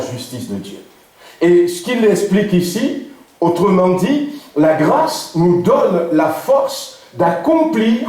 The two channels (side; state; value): both; identical; correlation 1.00